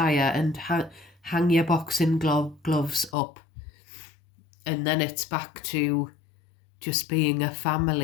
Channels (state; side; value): drops out; right; at 3.2 s